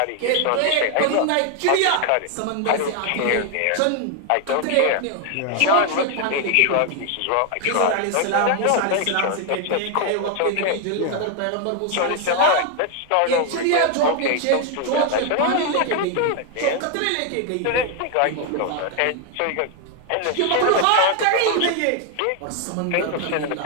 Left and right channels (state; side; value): different; both; correlation 0.01